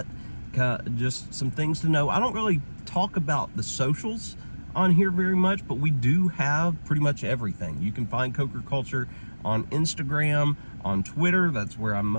just some things to know. I don't really talk about the socials on here very much, but we do have pretty much everything. You can find CokerCulture on Instagram, on Twitter. That's where I'm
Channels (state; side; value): inverted; both; correlation -1.00